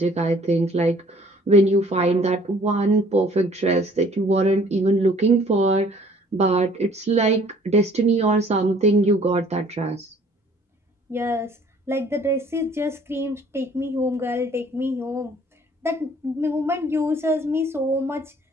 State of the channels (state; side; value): normal; both; correlation 0.56